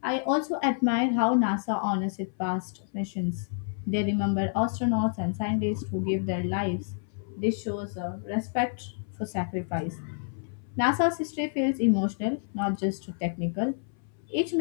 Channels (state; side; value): silent; right; 59 dB below the other